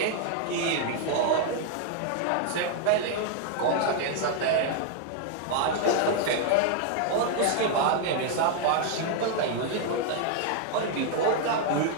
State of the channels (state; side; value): different; both; correlation 0.00